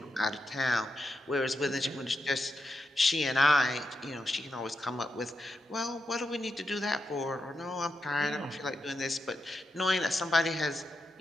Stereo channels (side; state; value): both; normal; correlation 0.86